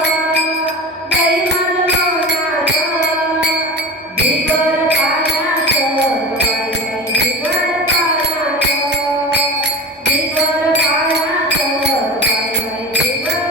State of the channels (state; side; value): normal; both; correlation 0.29